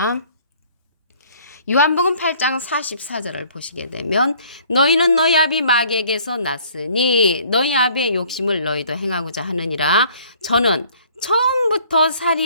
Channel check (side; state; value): both; inverted; correlation -0.57